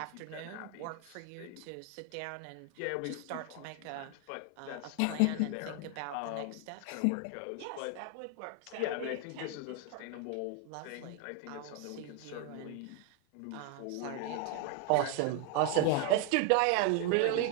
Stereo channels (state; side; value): different; both; correlation 0.00